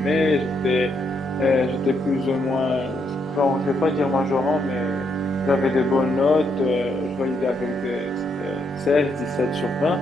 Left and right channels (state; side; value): normal; both; correlation 0.76